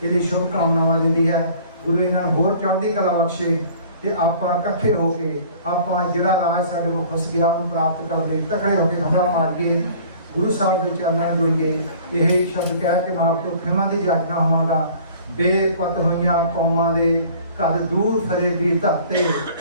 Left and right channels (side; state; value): both; inverted; correlation -0.50